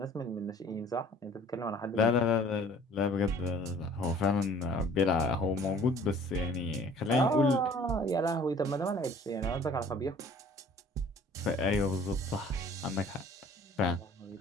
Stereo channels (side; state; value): both; normal; correlation 0.52